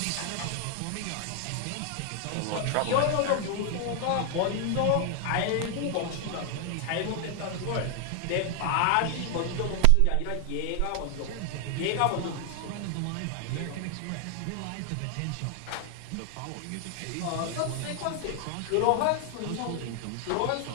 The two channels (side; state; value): both; different; correlation 0.00